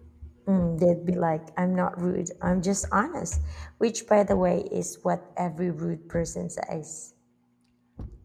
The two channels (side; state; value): both; identical; correlation 1.00